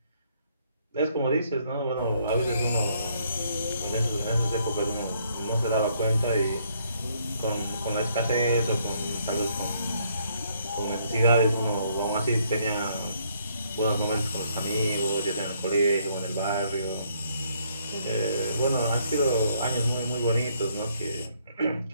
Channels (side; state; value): both; inverted; correlation -0.69